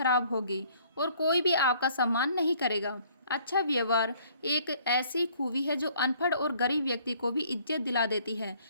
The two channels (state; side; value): inverted; both; correlation -0.60